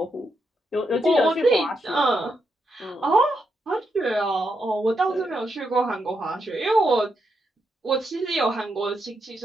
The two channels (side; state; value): both; normal; correlation 0.82